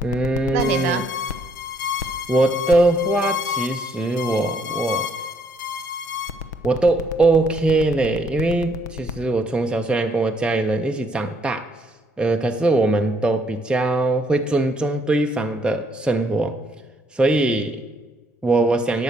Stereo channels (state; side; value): normal; both; correlation 0.69